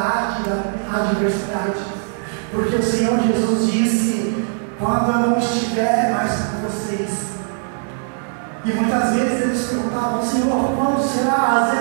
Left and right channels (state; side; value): silent; left; digital silence